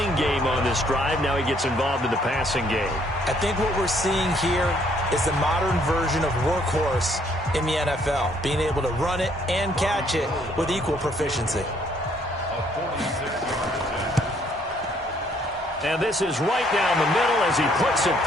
game on this drive. Now he gets involved in the passing game. I think what we're seeing here is the modern version of workhorse in the NFL, being able to run it and catch it with equal proficiency. And this is right down the middle as he puts it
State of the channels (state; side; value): normal; both; correlation 0.66